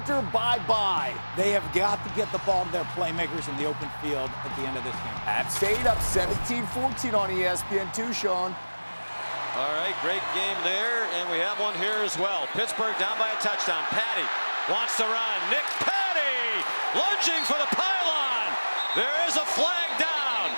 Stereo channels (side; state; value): both; inverted; correlation -1.00